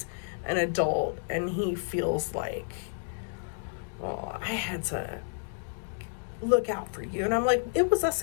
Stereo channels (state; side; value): silent; right; digital silence